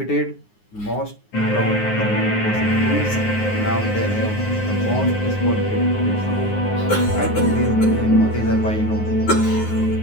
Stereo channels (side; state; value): right; late; 9.6 ms